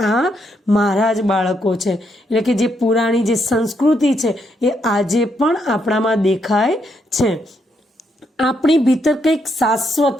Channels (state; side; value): normal; both; correlation 0.77